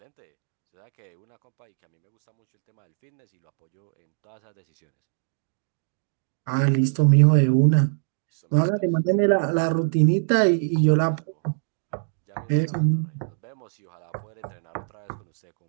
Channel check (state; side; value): silent; left; digital silence